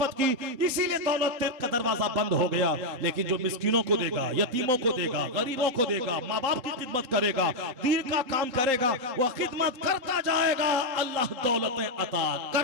की, इसीलिए दौलत का दरवाजा बंद हो गया। लेकिन जो मिस्कीनों को देगा, यतीमों को देगा, गरीबों को देगा, माँ बाप की खिदमत करेगा, दीन का काम करेगा, वह खिदमत करता जाएगा, अल्लाह दौलतें अता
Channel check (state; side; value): late; left; 3.8 ms